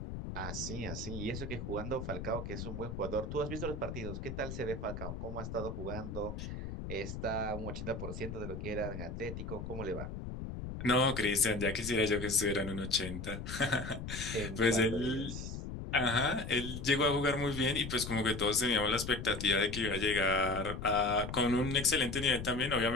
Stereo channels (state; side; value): noise; left; rumble, 7 dB below the sound